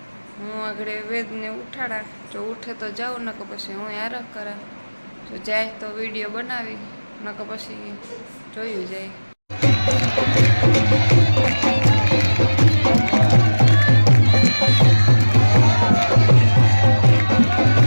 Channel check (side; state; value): both; inverted; correlation -1.00